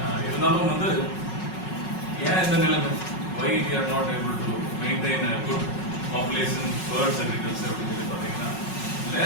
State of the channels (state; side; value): late; right; 5.4 ms